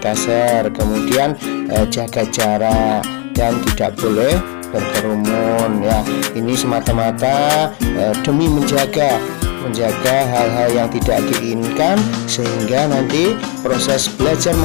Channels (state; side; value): quieter; right; 35.0 dB